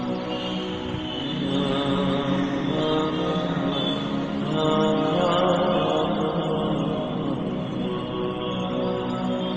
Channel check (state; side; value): identical; both; correlation 1.00